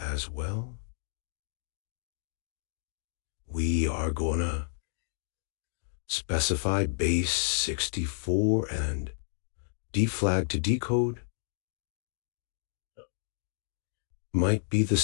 well. We are gonna specify base 64 and deflag to decode. Might be the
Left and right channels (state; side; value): silent; right; digital silence